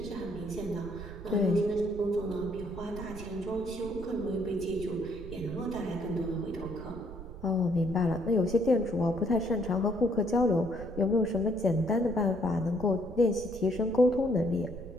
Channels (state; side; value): noise; right; rumble, 13 dB below the sound